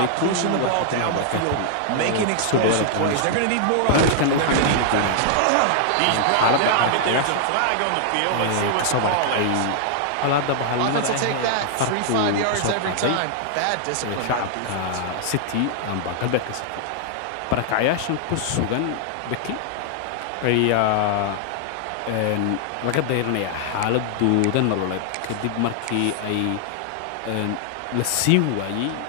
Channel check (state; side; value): different; both; correlation 0.00